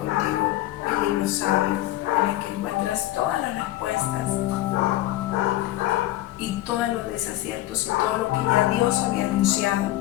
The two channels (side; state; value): right; quieter; 15.6 dB